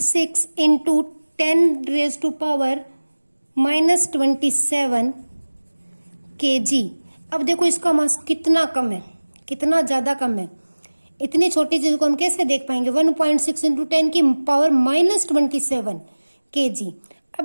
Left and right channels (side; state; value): both; inverted; correlation -1.00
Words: इंटू 10⁻⁻27 kg। अब देखो इसका मास कितना कम है, कितना ज्यादा कम है। इतनी छोटी चीज को हम कैसे देख पाएंगे? 1.6 इंटू 10⁻⁻27 kg।